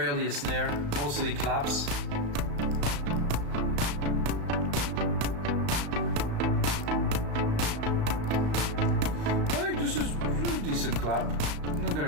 a snare, mostly claps. I think this is a decent clap. I'm not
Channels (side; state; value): left; late; 35 ms